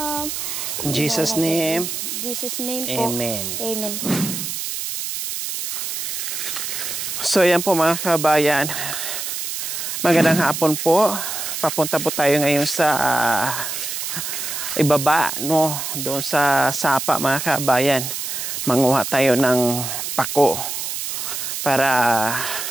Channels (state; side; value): noise; right; hiss, 4 dB below the sound